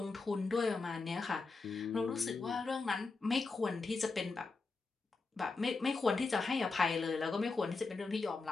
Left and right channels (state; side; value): quieter; right; 4.0 dB